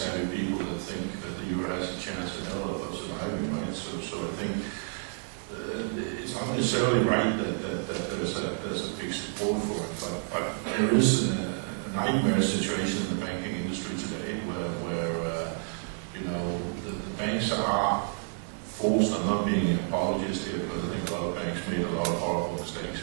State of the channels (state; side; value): silent; left; 58 dB below the other